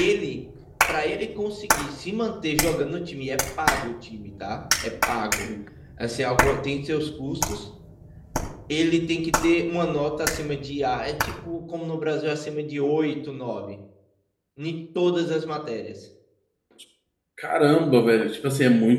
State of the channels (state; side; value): identical; both; correlation 1.00